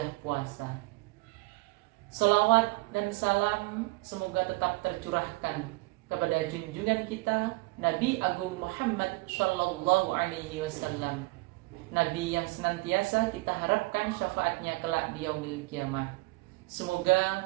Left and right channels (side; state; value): left; quieter; 24.4 dB